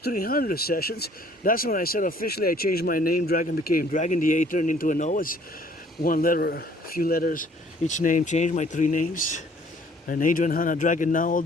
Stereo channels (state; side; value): normal; both; correlation 0.58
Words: 300 sessions, that's when I said officially I changed my name. Dragon became Dragon. The A turned into an O, as one letter, a few letters, each name changed, my 3 names. And Adrian Hannah Dragon now,